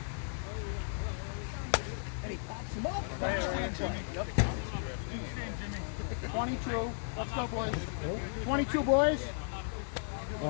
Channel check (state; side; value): silent; right; digital silence